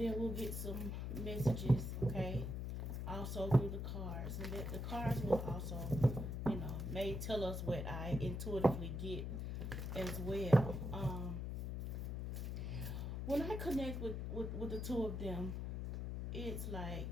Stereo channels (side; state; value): left; noise; hum, 3 dB below the sound